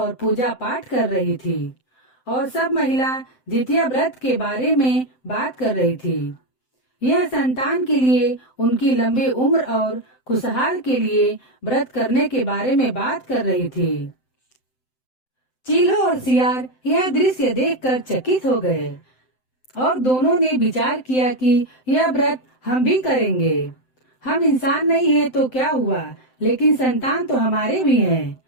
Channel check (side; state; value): right; late; 7.8 ms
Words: पूजा पाठ कर रही थी और सब महिला जितिया व्रत के बारे में बात कर रही थी। यह संतान के लिए, उनकी लंबी उम्र और खुशहाल के लिए व्रत करने के बारे में बात कर रही थी। चीलो और सियार यह दृश्य देखकर चकित हो गए और दोनों ने विचार किया कि यह व्रत हम भी करेंगे। हम इंसान नहीं है तो क्या हुआ, लेकिन संतान तो हमारे भी हैं।